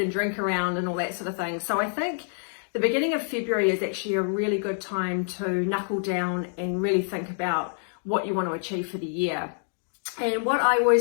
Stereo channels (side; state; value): right; silent; digital silence